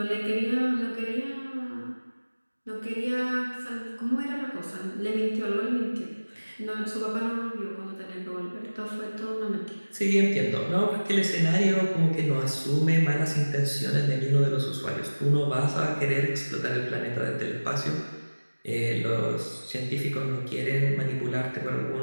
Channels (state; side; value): inverted; both; correlation -1.00